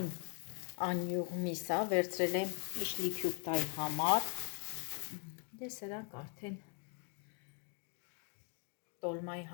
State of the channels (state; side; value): quieter; right; 38.1 dB